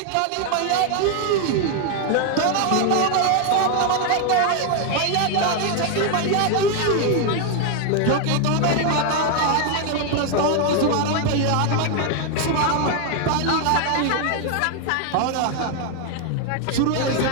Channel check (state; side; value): different; both; correlation 0.00